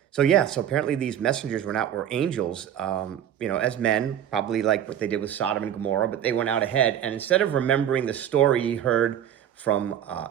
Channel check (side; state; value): left; quieter; 10.1 dB